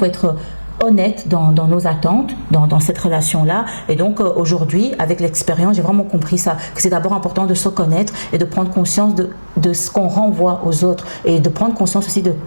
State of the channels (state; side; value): inverted; both; correlation -1.00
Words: être honnête dans nos attentes, dans cette relation-là. Et donc aujourd'hui, avec l'expérience, j'ai vraiment compris ça, que c'est d'abord important de se connaître et de prendre conscience de ce qu'on renvoie aux autres et de prendre conscience aussi de